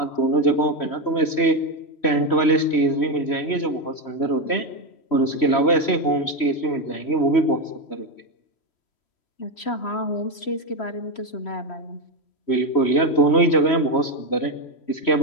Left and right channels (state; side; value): late; right; 3.1 ms